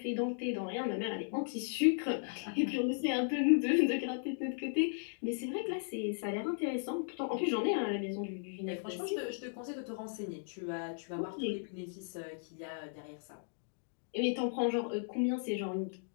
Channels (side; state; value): right; silent; digital silence